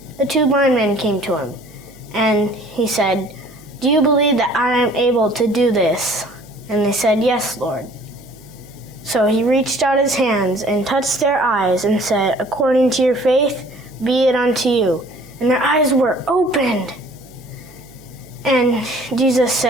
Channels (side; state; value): right; noise; hum, 25 dB below the sound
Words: the 2 blind men came to him, and he said, "Do you believe that I am able to do this?" And they said, "Yes, Lord." So he reached out his hands and touched their eyes and said, "According to your faith, be it unto you." And their eyes were opened. And Jesus